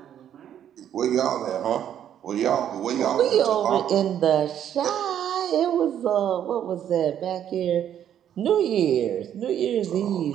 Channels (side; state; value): left; quieter; 10.0 dB